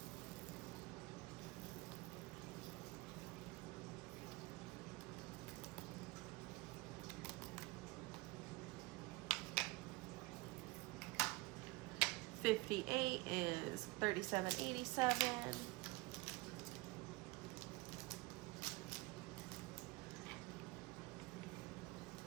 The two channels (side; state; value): left; quieter; 23.0 dB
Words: $58 is 37.87.